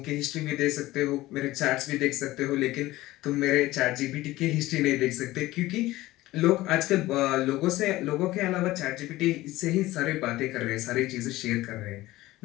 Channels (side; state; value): right; quieter; 17.4 dB